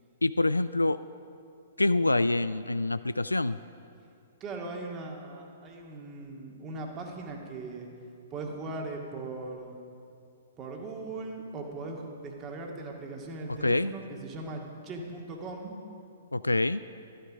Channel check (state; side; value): inverted; both; correlation -0.86